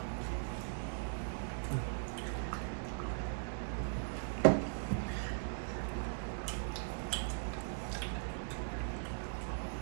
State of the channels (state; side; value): silent; left; digital silence